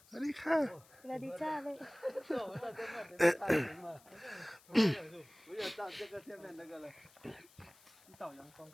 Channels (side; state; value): left; noise; hiss, 26 dB below the sound